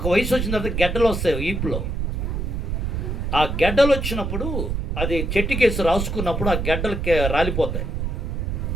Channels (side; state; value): right; noise; rumble, 2 dB below the sound